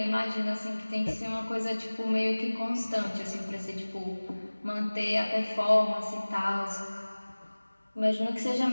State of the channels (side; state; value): both; inverted; correlation -1.00